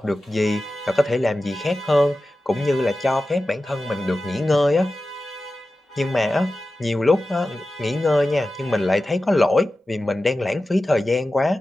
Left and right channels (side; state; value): both; normal; correlation 0.94